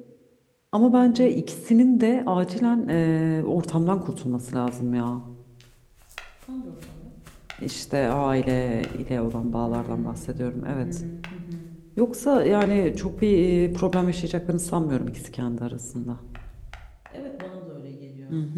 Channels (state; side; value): identical; both; correlation 1.00